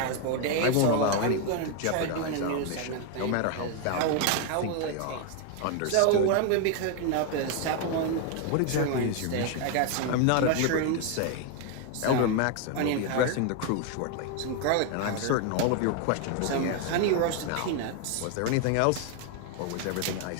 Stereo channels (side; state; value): both; different; correlation 0.01